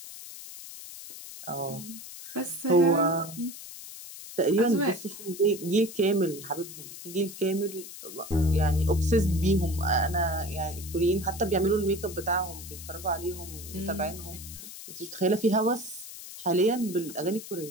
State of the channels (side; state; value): left; noise; hiss, 13 dB below the sound